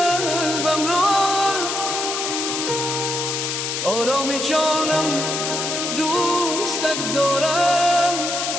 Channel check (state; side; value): noise; left; hiss, 2 dB below the sound